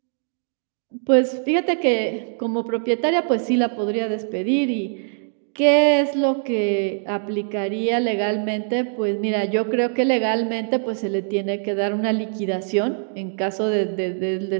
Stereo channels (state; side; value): silent; left; digital silence